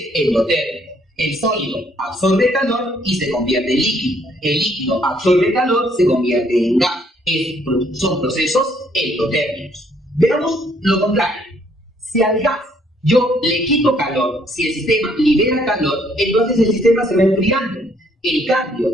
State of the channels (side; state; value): both; normal; correlation 0.66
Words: endotérmico. El sólido absorbe calor y se convierte en líquido. El líquido absorbe calor, se convierte en gas. Son procesos endotérmicos. Veamos lo contrario. Si al gas yo le quito calor, si el sistema libera calor, entonces el sistema se va enfriando. El